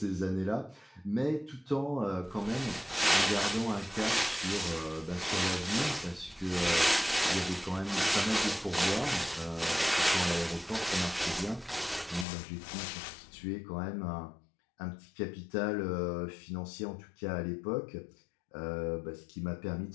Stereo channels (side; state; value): right; drops out; at 12.2 s